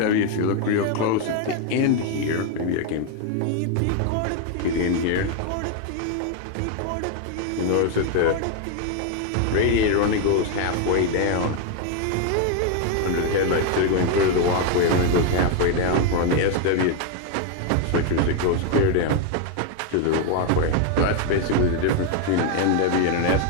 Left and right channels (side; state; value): both; different; correlation 0.01